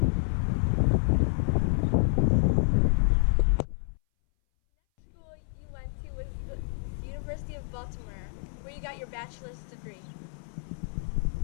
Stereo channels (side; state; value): right; silent; 59 dB below the other